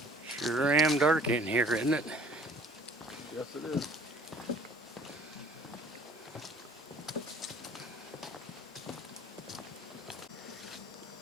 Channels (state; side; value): normal; both; correlation 0.53